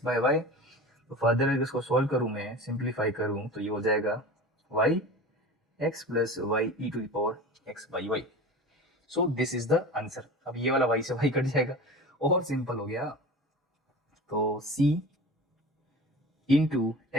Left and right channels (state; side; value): normal; both; correlation 0.35